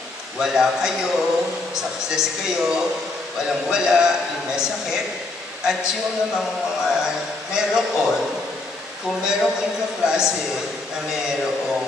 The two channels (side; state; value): right; quieter; 3.2 dB